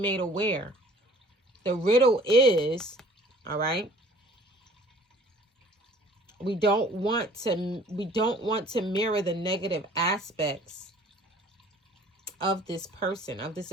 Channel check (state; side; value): normal; both; correlation 0.52